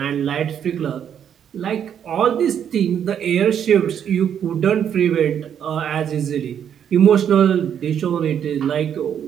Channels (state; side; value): quieter; left; 8.8 dB